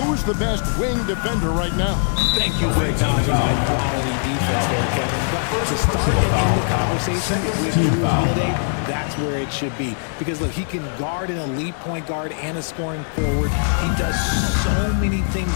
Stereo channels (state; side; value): silent; right; digital silence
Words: the best wing defender right now? Thank you for acknowledging my quality defense there, Kevin. But to start and end the conversation with Drew Holiday, that's where it should be. Because, look, he can guard an elite point guard and a scoring forward. He does so many